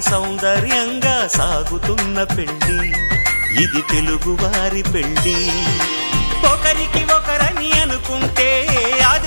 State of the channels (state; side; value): inverted; both; correlation -1.00